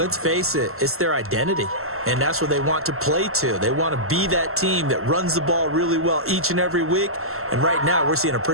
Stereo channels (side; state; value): left; late; 0.62 ms